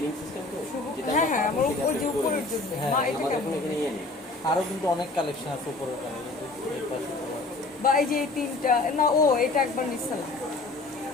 সিস্টেম তো যেটা হ্যাঁ হ্যাঁ, আমার আমরা ওই যে উপরের জন্য। মা, এটা আমাদের কেমন? এখানে এখানে ইয়ে নেই। আরো কিন্তু অনেক কালেকশন আছে উপরের কানে, কিন্তু এই পাশে তোমার বা এই যে এই 3টা না, ও এটা একবার নিছিলাম,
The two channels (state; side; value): quieter; right; 3.3 dB